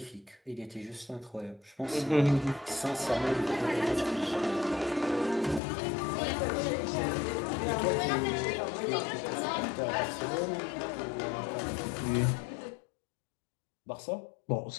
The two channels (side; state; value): right; drops out; at 5.6 s